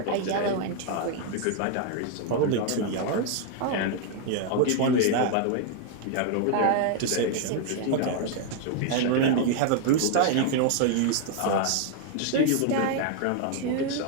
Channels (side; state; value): both; different; correlation 0.00